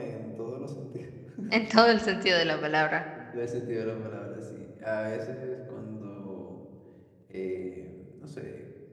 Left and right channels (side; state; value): both; identical; correlation 1.00